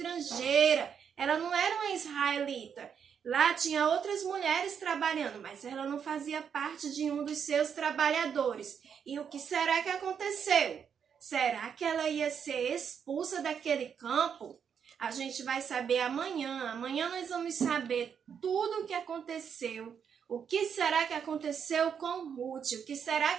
Ela não era uma israelita. Lá tinha outras mulheres trabalhando, mas ela não fazia parte de um dos seus trabalhadores. E o que será que aconteceu? Será que ela ia ser expulsa daquele campo? A gente vai saber amanhã. Amanhã nós vamos saber tudo o que aconteceu. O que será que aconteceu com Ruth? O que será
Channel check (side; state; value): left; quieter; 7.4 dB